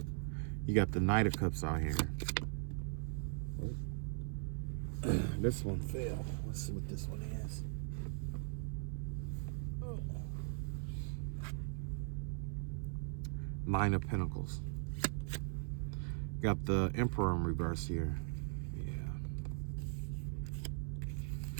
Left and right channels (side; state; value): left; silent; 51 dB below the other